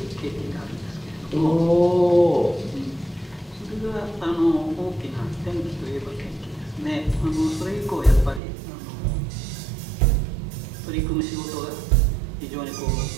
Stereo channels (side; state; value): left; drops out; at 8.4 s